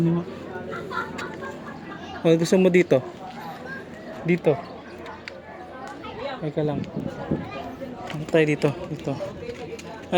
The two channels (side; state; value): both; identical; correlation 1.00